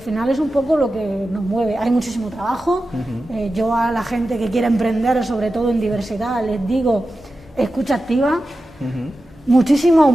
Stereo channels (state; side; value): normal; both; correlation 0.93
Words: final es un poco lo que nos mueve. Hay muchísimo trabajo. Yo a la gente que quiere emprender, sobre todo en diversidad, les digo, escucha activa, muchísima